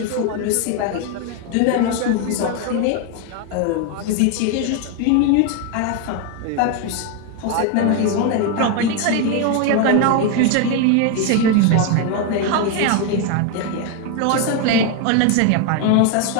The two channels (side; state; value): both; different; correlation 0.01